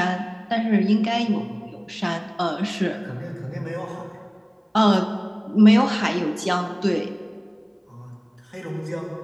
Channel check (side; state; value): both; identical; correlation 1.00